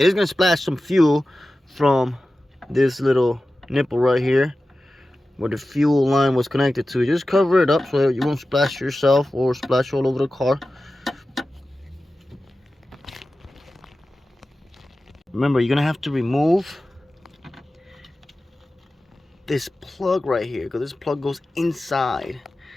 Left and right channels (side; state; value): both; normal; correlation 0.95